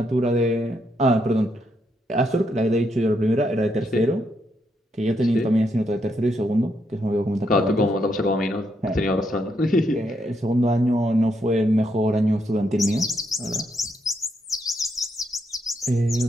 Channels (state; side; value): normal; both; correlation 0.78